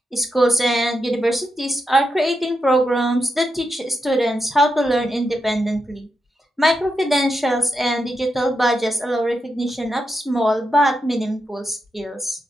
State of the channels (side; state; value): both; normal; correlation 0.85